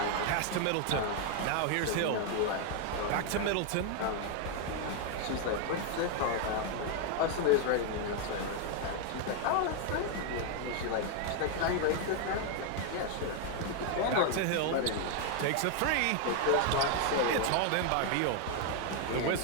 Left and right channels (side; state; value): both; different; correlation 0.00